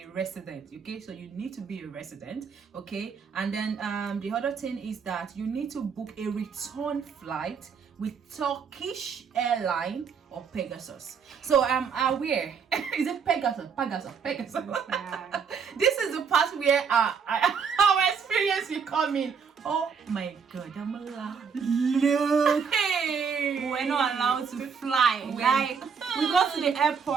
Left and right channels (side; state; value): left; quieter; 6.3 dB